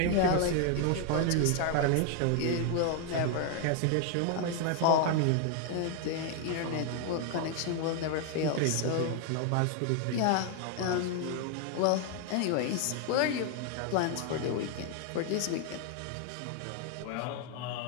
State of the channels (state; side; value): different; both; correlation 0.00